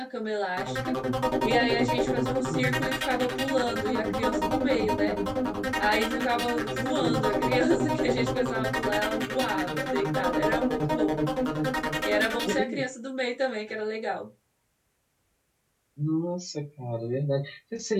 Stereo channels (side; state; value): both; identical; correlation 1.00